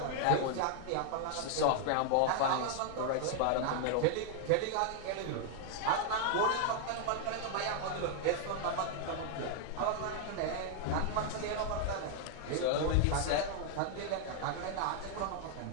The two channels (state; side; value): different; both; correlation 0.00